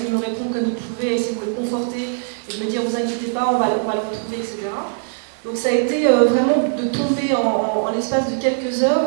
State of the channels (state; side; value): silent; left; digital silence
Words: de me répondre comme il pouvait, essayer de me le conforter et de me dire vous inquiétez pas, on va le retrouver, etc. Donc ça a été vraiment de tomber en l'espace de quelques heures,